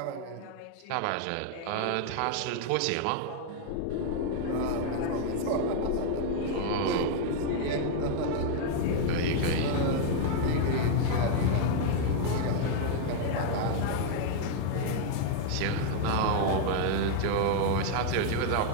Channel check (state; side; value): different; both; correlation 0.00